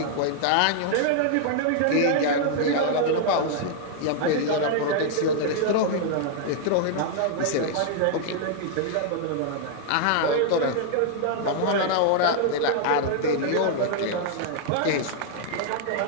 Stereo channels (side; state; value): both; different; correlation -0.01